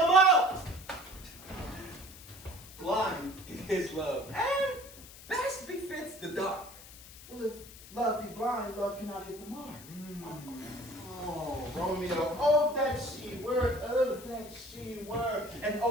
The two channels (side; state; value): left; noise; hiss, 17 dB below the sound